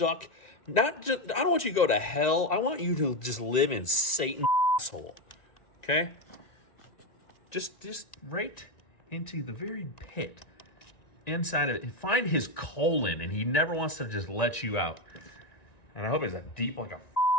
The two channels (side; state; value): right; late; 1.9 ms